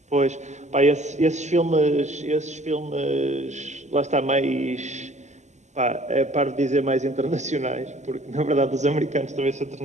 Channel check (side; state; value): left; late; 0.34 ms